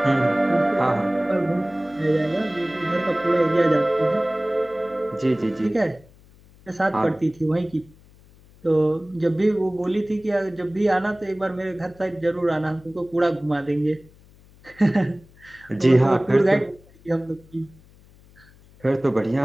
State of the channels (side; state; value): left; noise; hum, 26 dB below the sound